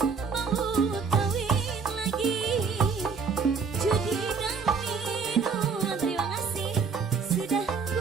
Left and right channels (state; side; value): quieter; left; 5.4 dB